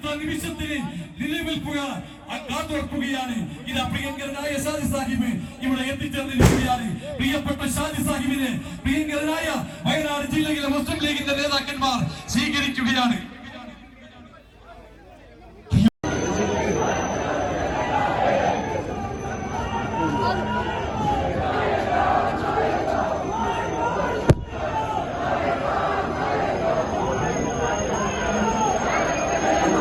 നിമിഷത്തിന് കാതോർക്കുകയാണ്. ഇതാ പ്രിയങ്കരനായ ഷാജി സാഹിബ് ഇവിടെ എത്തിച്ചേർന്നിരിക്കുകയാണ്. പ്രിയപ്പെട്ട ഷാജി സാഹിബിനെ പ്രിയങ്കരനായ വയനാട് ജില്ലയിലെ മുസ്ലിം ലീഗിന്റെ നേതാക്കന്മാർ സ്വീകരിക്കുകയാണ്.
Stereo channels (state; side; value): identical; both; correlation 1.00